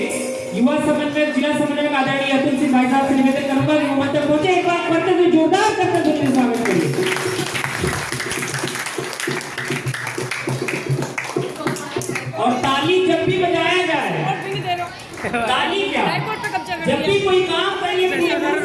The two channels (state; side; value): identical; both; correlation 1.00